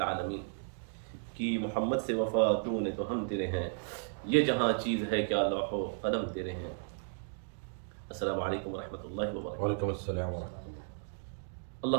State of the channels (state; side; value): silent; left; digital silence